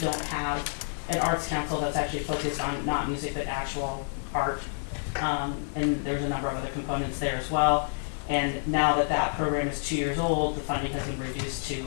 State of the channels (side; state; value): right; silent; digital silence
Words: have an arts council that's actually focused on not music but actual art. And there's a number of other components there as well. And now that that program is 2 years old, the funding has been reduced to